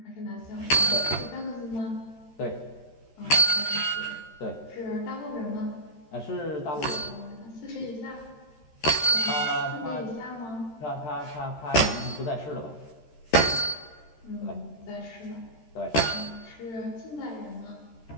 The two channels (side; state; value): right; late; 13 ms